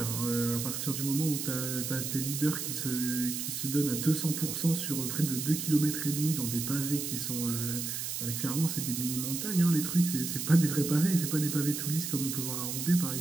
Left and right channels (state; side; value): noise; right; hiss, 4 dB below the sound